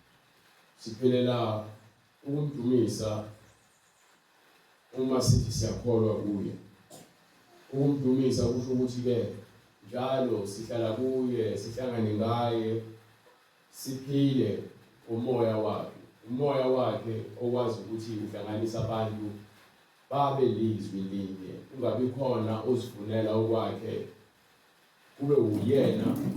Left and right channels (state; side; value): identical; both; correlation 1.00